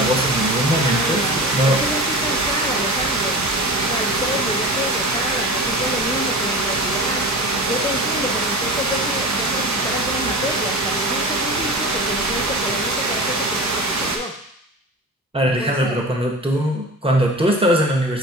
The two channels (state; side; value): normal; both; correlation 0.32